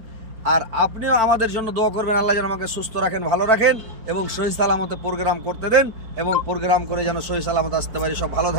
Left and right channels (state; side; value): late; left; 4.4 ms